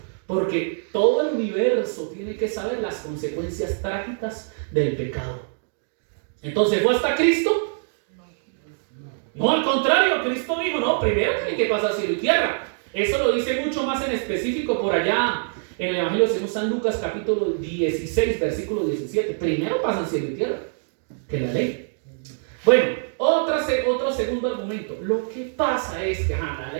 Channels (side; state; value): left; silent; digital silence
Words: Porque todo el universo tiene que saber las consecuencias trágicas del pecado. Entonces, ¿fue hasta Cristo? No, al contrario, Cristo dijo, no, primero tiene que pasar cielo y tierra. Eso lo dice mucho más en específico por allá en el Evangelio de San Lucas capítulo 16, versículo 17. Primero pasan cielo y tierra que la ley. Bueno, otro segundo argumento. Lo que pasa es que la